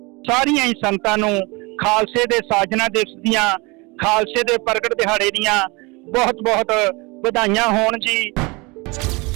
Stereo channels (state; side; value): quieter; left; 26.4 dB